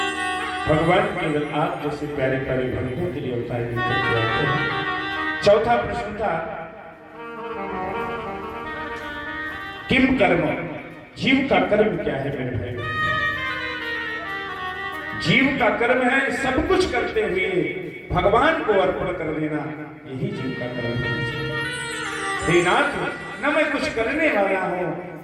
भगवान केवल आप जैसे प्यारे प्यारे भक्तों के लिए अवतार लेकर के आते हैं। चौथा प्रश्न था किम कर्म, जीव का कर्म क्या है मेरे भाई? जीव का कर्म है सब कुछ करते हुए भगवान को अर्पण कर देना, यही जीव का कर्म है। हे नाथ, न मैं कुछ करने वाला हूं,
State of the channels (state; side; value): identical; both; correlation 1.00